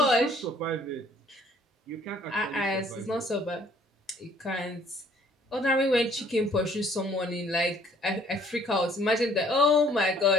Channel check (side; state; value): both; normal; correlation 0.60